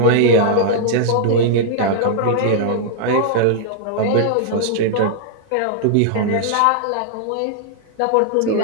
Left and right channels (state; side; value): different; both; correlation -0.01